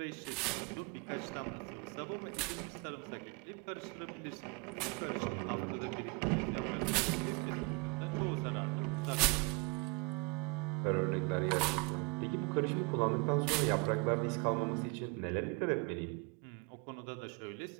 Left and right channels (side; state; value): left; quieter; 30.5 dB